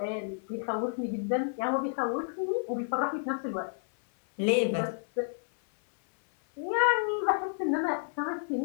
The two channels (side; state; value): right; silent; 56 dB below the other